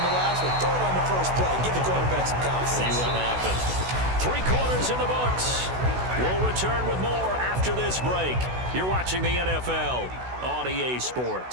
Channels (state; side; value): late; left; 16 ms